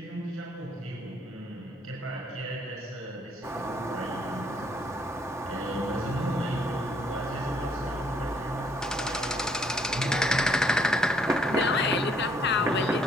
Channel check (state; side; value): normal; both; correlation 0.66